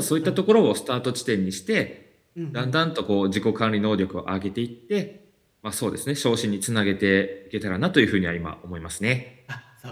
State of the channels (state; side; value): identical; both; correlation 1.00